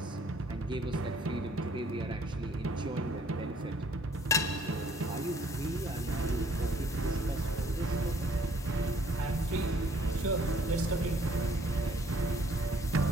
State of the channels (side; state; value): both; normal; correlation 0.61